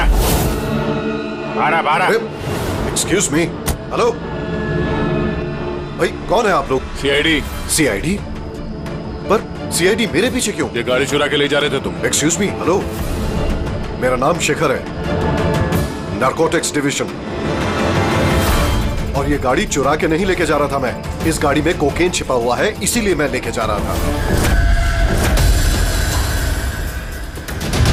'Excuse me, हेलो भाई, कौन है आप लोग? सीआईडी। सीआईडी? पर सीआईडी मेरे पीछे क्यों? ये गाड़ी चुरा के ले जा रहे थे तुम। एक्सक्यूज मी, हेलो, मेरा नाम शेखर है, नारकोटिक्स डिवीजन, और ये गाड़ी चुरा के नहीं लेके जा रहा था मैं। इस गाड़ी में कोकेन छिपा हुआ है, इसीलिए मैं लेके जा रहा था।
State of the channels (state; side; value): identical; both; correlation 1.00